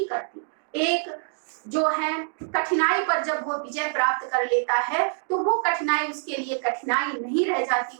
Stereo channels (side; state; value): left; silent; digital silence